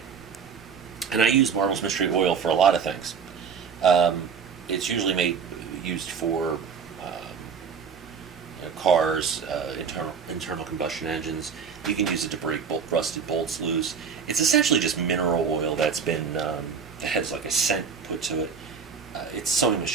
And I use Marvel's Mystery Oil for a lot of things. It's usually used for cars, internal combustion engines. You can use it to break rusted bolts loose. It's essentially just mineral oil that's been that has like a scent put to it. It's sewing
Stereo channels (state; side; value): quieter; left; 6.3 dB